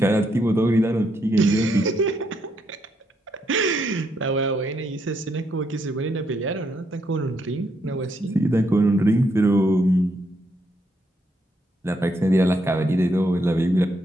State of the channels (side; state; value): both; normal; correlation 0.76